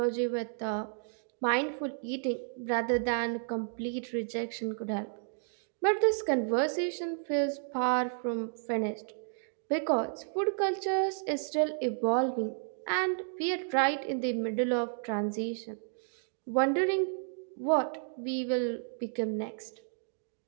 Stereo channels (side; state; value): left; silent; digital silence